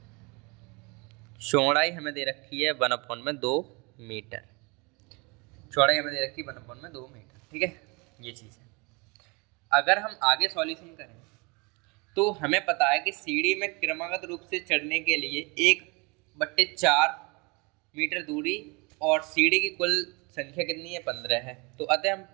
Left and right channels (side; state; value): left; quieter; 28.8 dB